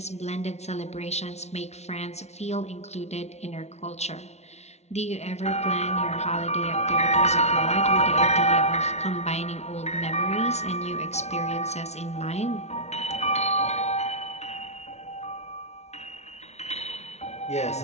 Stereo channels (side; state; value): right; late; 0.32 ms